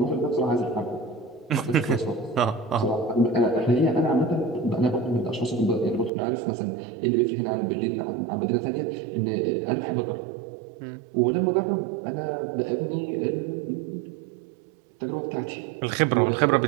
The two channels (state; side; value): drops out; left; at 6.1 s